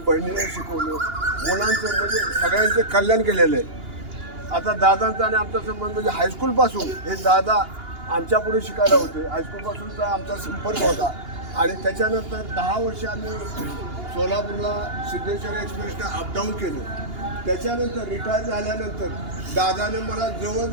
बहिणीला शिकवलं, मुलांचं म्हणजे सगळ्यांचे कल्याण केलेलं आहे. आता दादांचा आणि आमचा संबंध म्हणजे हायस्कूलपासून हे दादा आमच्या पुढे शिकायला होते. हायस्कूलपासूनचा आमचा संपर्क होता आणि त्याच्यानंतर 10 वर्ष आम्ही सोलापूरला सिद्धेश्वर एक्सप्रेसनं अपडाऊन केलं. त्याच्यानंतर रिटायर झाल्यानंतर दादाने मला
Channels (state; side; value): late; left; 2.8 ms